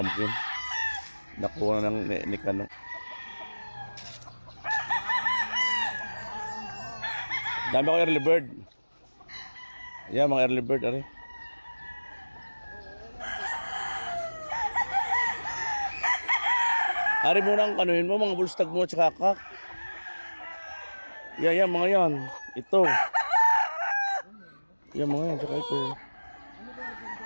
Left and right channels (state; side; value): inverted; both; correlation -1.00